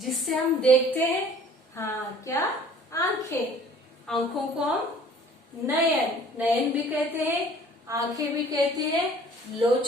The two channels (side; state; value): both; normal; correlation 0.51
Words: हम देखते हैं। हाँ, क्या? आंखें। आंखों को हम नयन, नयन भी कहते हैं, आंखें भी कहते हैं,